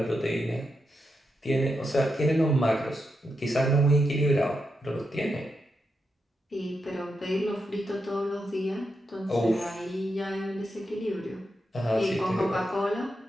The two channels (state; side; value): normal; both; correlation 0.85